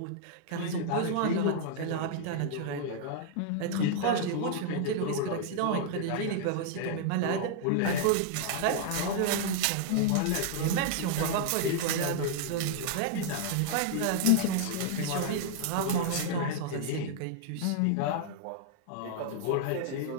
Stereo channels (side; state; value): both; different; correlation -0.01